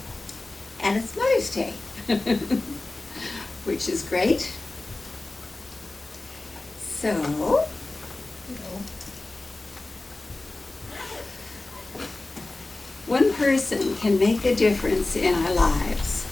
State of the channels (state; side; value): quieter; right; 3.0 dB